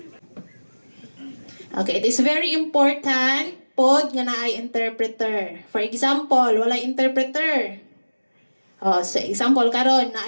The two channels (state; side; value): inverted; both; correlation -1.00